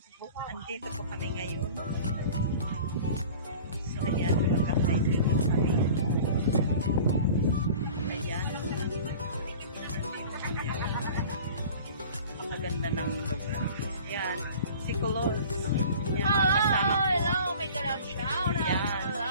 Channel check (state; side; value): inverted; both; correlation -0.42